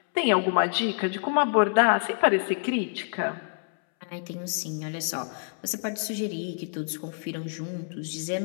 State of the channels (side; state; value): right; silent; 60 dB below the other